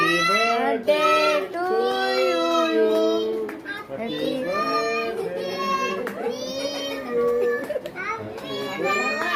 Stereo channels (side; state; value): both; identical; correlation 1.00